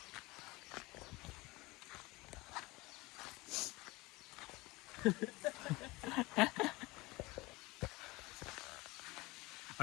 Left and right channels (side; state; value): right; quieter; 22.4 dB